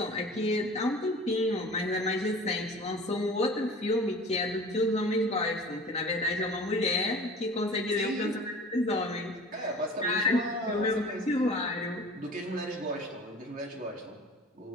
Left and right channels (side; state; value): both; normal; correlation 0.41